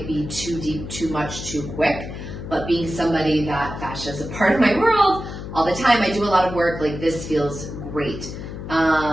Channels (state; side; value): noise; left; hum, 9 dB below the sound